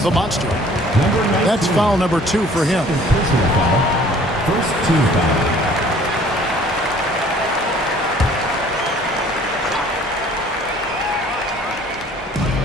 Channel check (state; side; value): normal; both; correlation 0.54